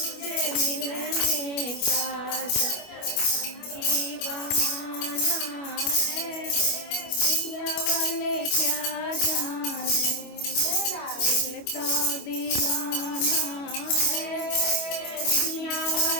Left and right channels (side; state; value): right; late; 25 ms